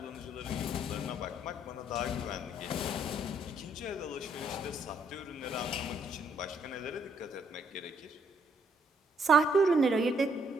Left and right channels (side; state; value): both; normal; correlation 0.70